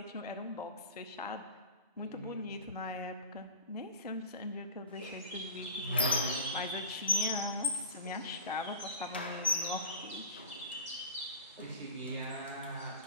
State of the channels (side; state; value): both; inverted; correlation -0.34